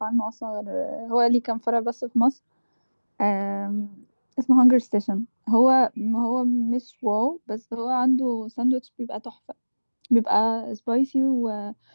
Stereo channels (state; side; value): inverted; both; correlation -1.00